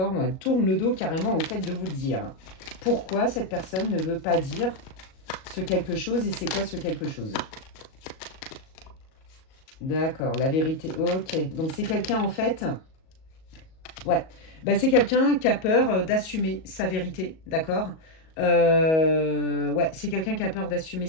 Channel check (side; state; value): right; late; 38 ms